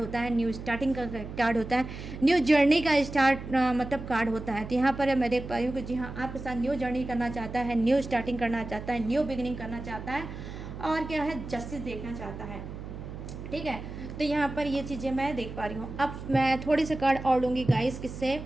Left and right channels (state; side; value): noise; right; hum, 10 dB below the sound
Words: है, न्यू स्टार्टिंग का कार्ड होता है, न्यू जर्नी का स्टार्ट मतलब कार्ड होता है। तो यहाँ पर मैं देख पा रही हूँ कि जी हाँ, आपके साथ न्यू जर्नी करना चाहता है, न्यू स्टार्टिंग करना चाहता है, न्यू बिगिनिंग करना चाहता है और क्या है, जस्टिस देखना चाहता है, ठीक है। तो यहाँ पर ये चीज़ें मैं देख पा रही हूँ। अब मैं थोड़ी से कार्ड और लूँगी गाइस, किससे